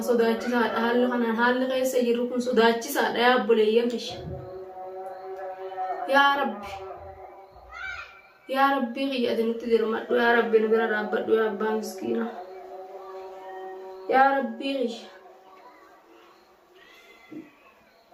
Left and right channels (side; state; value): both; identical; correlation 1.00